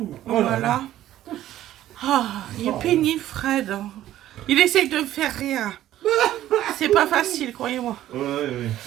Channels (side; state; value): left; quieter; 13.2 dB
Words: Oh Voilà. là là. Ah, il est pénible, Fred. Il essaye de me faire rien. C'est pas facile, croyez-moi. Ouais,